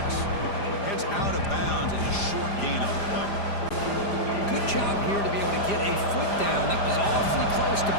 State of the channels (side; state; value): right; late; 5.0 ms